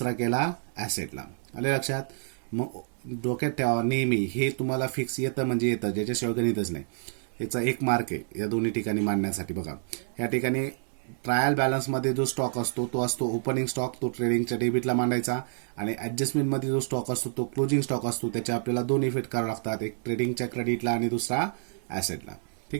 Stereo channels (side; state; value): left; silent; digital silence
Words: केला ऍसेटला. आले लक्षात. मग डोक्यात ठेवा नेहमी, हे तुम्हाला फिक्स येतं म्हणजे येतं, ज्याच्याशिवाय गणितच नाही. याचा एक मार्क आहे या दोन्ही ठिकाणी मांडण्यासाठी. बघा, या ठिकाणी ट्रायल बॅलन्समध्ये जो स्टॉक असतो तो असतो ओपनिंग स्टॉक. तो ट्रेडिंगच्या डेबिटला मांडायचा. आणि ऍडजस्टमेंटमध्ये जो स्टॉक असतो तो क्लोजिंग स्टॉक असतो. त्याच्या आपल्याला 2 इफेक्ट करावे लागतात, एक ट्रेडिंगच्या क्रेडिटला आणि दुसरा ऍसेटला.